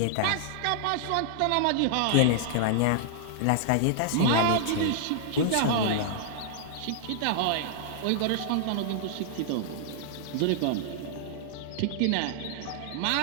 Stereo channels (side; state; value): both; different; correlation -0.01